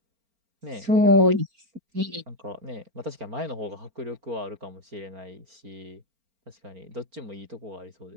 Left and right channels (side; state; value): left; late; 4.4 ms